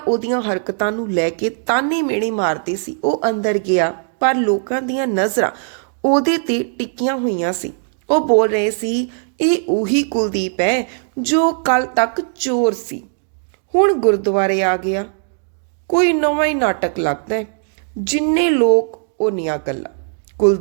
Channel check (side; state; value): left; silent; digital silence